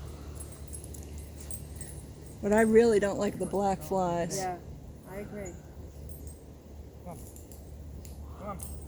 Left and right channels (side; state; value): both; identical; correlation 1.00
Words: But I really don't like the black flies. Yeah, I agree. come on,